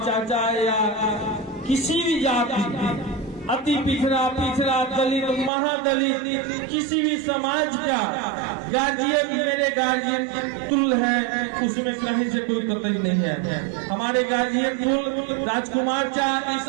चाचा या किसी भी जाति, अति पिछड़ा, दलित, महादलित, किसी भी समाज का गार्जियन मेरे गार्जियन तुल्य है, उसमें कहीं से कोई कतई नहीं है। हमारे गार्जियन तुल्य राजकुमार चा इस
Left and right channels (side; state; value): left; drops out; at 5.5 s